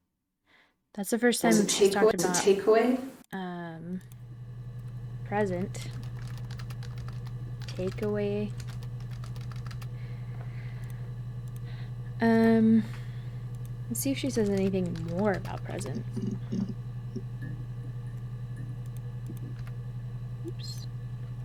That's the first time she's talked about takeaway. Present. Takeaway. Let's see if she says anything more about present. Oops.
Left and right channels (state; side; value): identical; both; correlation 1.00